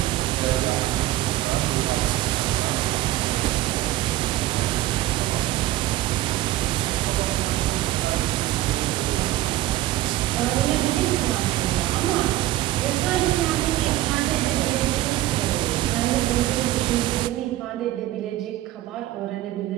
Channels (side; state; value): left; quieter; 15.5 dB